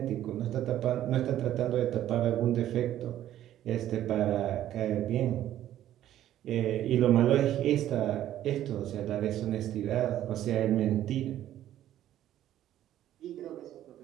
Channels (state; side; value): quieter; left; 12.3 dB